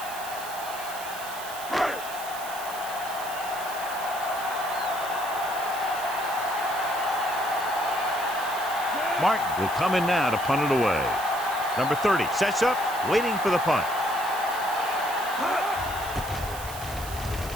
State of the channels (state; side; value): noise; right; hiss, 12 dB below the sound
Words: Martin will come in now to punt it away. Number 30 sets up, waiting for the punt.